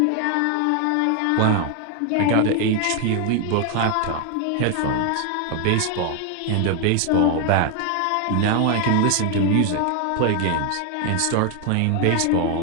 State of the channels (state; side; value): different; both; correlation 0.01